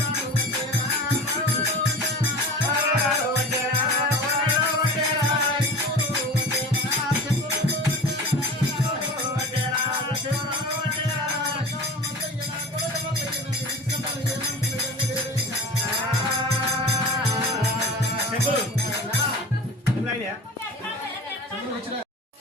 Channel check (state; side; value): normal; both; correlation 0.37